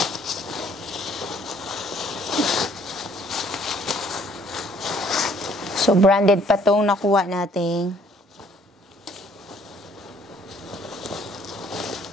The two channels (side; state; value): both; normal; correlation 0.61